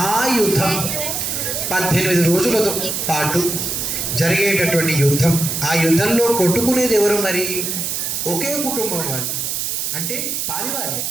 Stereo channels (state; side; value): noise; right; hiss, 2 dB below the sound